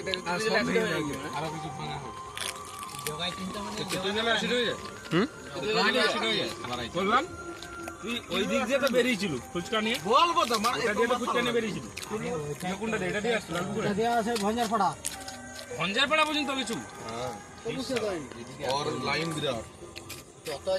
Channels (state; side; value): identical; both; correlation 1.00